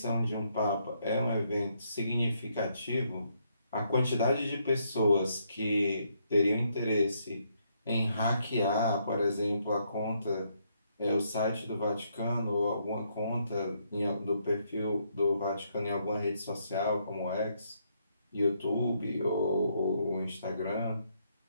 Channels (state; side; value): inverted; both; correlation -0.74